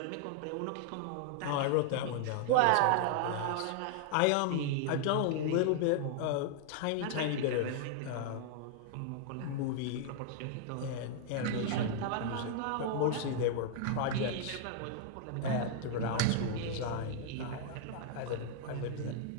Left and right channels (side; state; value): both; different; correlation 0.00